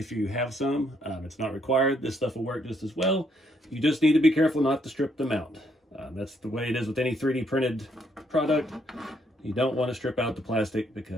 you have some. It's not required. This stuff will work just as well. You just need to be careful not to strip them out. That's the way it is with any 3D printed product. You don't want to strip out the plastic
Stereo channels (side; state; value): both; normal; correlation 0.72